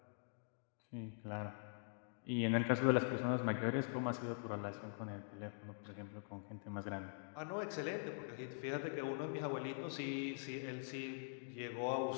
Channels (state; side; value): silent; right; digital silence